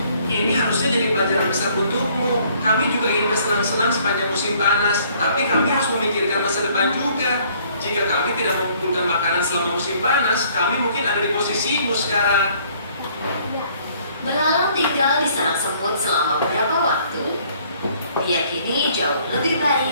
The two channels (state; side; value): inverted; both; correlation -0.61